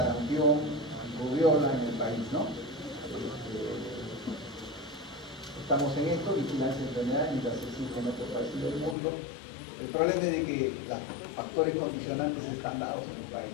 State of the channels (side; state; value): right; drops out; at 9.0 s